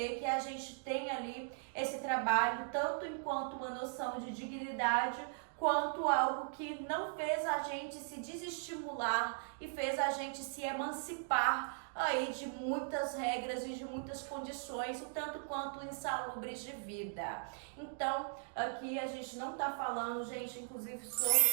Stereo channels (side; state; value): left; silent; digital silence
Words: que a gente tem ali esse trabalho tanto enquanto uma noção de dignidade, quanto algo que não fez a gente se desestimular e fez a gente se emancipar aí de muitas regras e de muitas condições, o tanto quanto insalubres de vida. Então, aqui a gente não tá falando, gente, inclusive